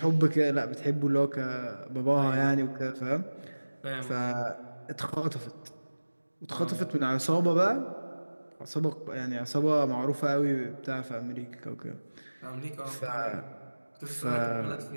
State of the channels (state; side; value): inverted; both; correlation -1.00